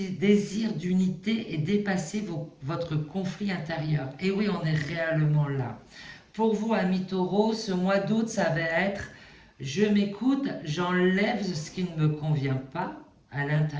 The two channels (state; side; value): identical; both; correlation 1.00